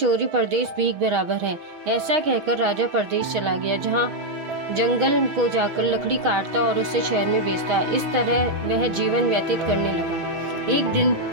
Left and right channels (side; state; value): left; late; 6.3 ms